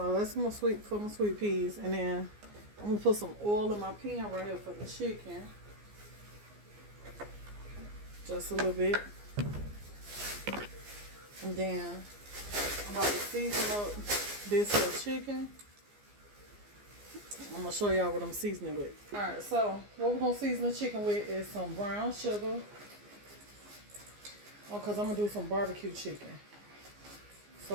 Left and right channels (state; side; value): late; left; 14 ms